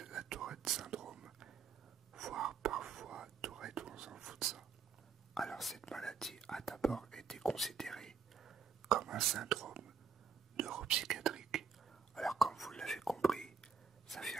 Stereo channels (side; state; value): left; quieter; 5.8 dB